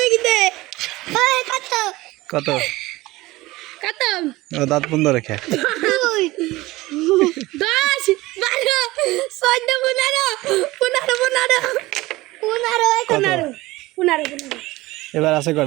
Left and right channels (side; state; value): left; quieter; 19.5 dB